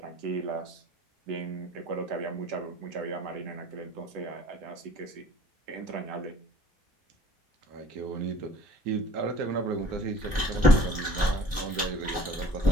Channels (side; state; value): both; normal; correlation 0.50